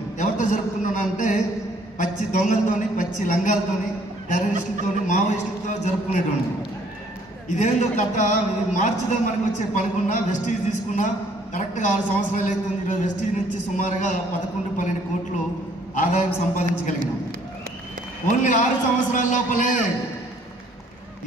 ఎవరితో జరుపుకున్నాను అంటే పచ్చి దొంగలతోని, పచ్చి లంగాలతోని, టెర్రరిస్టులతోని, మావోయిస్టులతో జరుపుకునేటువంటి. ఇదేందో కథ, ఇది మార్చిదా మనకు వచ్చే పనుకున్నా, వెస్టీజ్ తీసుకున్నా కరెక్ట్గా 6 సంవత్సరాలు అవుతుంది. ఈరోజు వెస్టీజ్ నుంచి సుమారుగా 11-12 కోట్లు ఆదాయం సంపాదించగలిగినాం. ఓన్లీ 6 సంవత్సరాల లోపలే.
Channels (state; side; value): normal; both; correlation 0.62